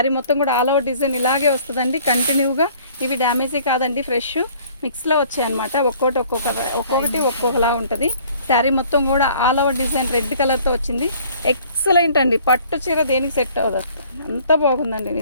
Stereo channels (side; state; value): both; inverted; correlation -0.55